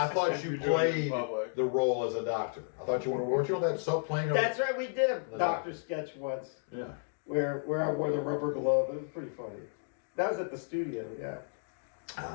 thought you You're doing it in played public. the role as a doctor. I thought weren't you on that soap playing? That's right. We did a doctor sketch once Yeah. where I wore the rubber glove. It was pretty funny. That was at the studio. Yeah.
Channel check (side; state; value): right; silent; digital silence